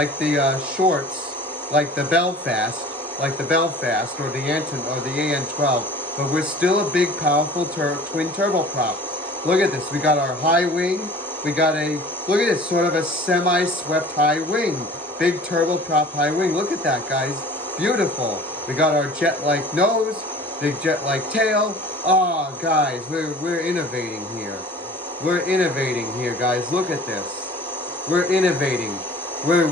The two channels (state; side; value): normal; both; correlation 0.45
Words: shorts, like the Belfast, or the AN12, but we're still a big, powerful twin turboprop. Look at this. We got our high wing. We got look at this, sort of a semi-swept high wing. Big turboprop high wing. Look at that, guys. Beautiful. We got our jet-like nose, big jet-like tail. Oh, guys, we're innovating here. We're innovating here, guys. Look at this. We're innovating.